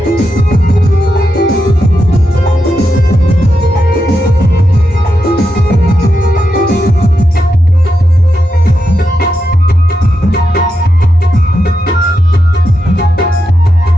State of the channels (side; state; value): both; normal; correlation 0.86